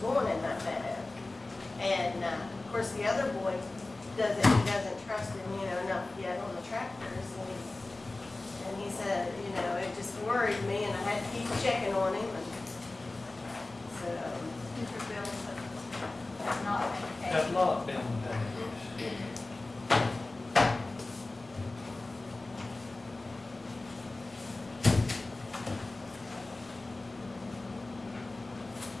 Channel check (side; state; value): right; quieter; 3.0 dB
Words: in that meadow. And, of course, the other boy he doesn't trust him, enough yet on the tractors. And he said, it just worried me, and I had to keep checking on him. And so, Future bills have not been paid. Have not been paid.